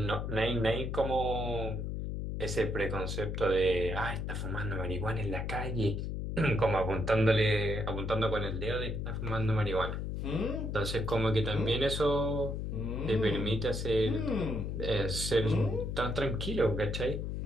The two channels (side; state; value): left; noise; hum, 3 dB below the sound